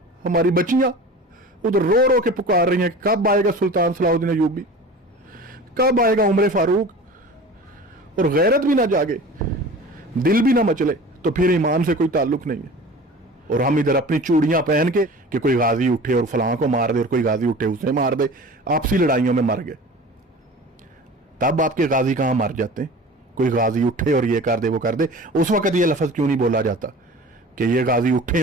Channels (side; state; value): both; normal; correlation 0.39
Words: ہماری بچیاں ادھر رو رو کے پکار رہی ہیں کہ کب آئے گا سلطان صلاح الدین ایوبی، کب آئے گا عمر فاروق. اور غیرت بھی نہ جاگے، دل بھی نہ مچلے تو پھر ایمان سے کوئی تعلق نہیں ہے. اور ہم ادھر اپنی چوڑیاں پہن کے کہ کوئی غازی اٹھے اور فلاں کو مار دے اور کوئی غازی اٹھے اسے مار دے، آپسی لڑائیوں میں مر گئے. تب آپ کے غازی کہاں مر جاتے ہیں؟ کوئی غازی اٹھے اور یہ کر دے وہ کر دے. اس وقت یہ لفظ کیوں نہیں بولا جاتا کہ یہ غازی اٹھیں